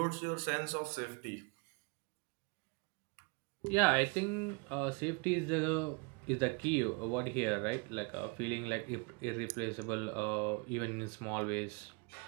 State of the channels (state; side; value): quieter; left; 31.8 dB